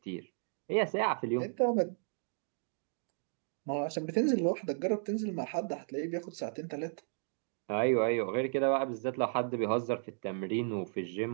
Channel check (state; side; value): silent; left; digital silence